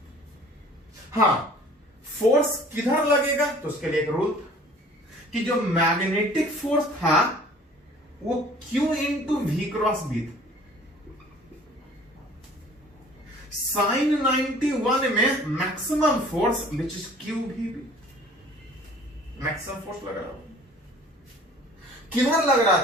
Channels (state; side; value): normal; both; correlation 0.50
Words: हाँ, फोर्स किधर लगेगा तो उसके लिए एक रूल कि जो मैग्नेटिक फोर्स था वो Q into V cross B था। sin 91 में maximum force which is QVB, maximum force लग रहा था। किधर लग रहा